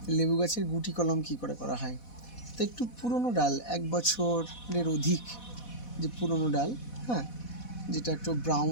লেবু গাছের গুটি কলম কী করে করা হয়। তো একটু পুরনো ডাল, 1 বছরের অধিক যে পুরনো ডাল, হ্যাঁ, যেটা একটু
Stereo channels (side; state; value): right; late; 4.1 ms